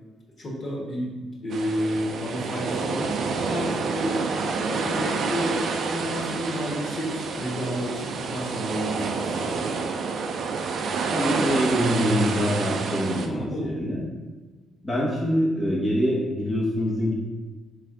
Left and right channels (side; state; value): both; normal; correlation 0.77